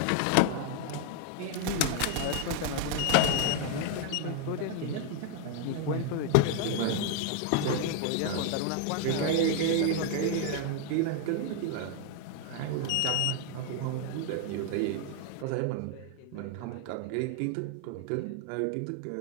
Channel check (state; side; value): different; both; correlation 0.01